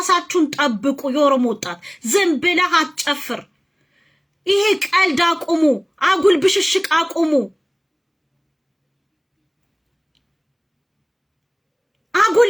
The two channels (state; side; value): identical; both; correlation 1.00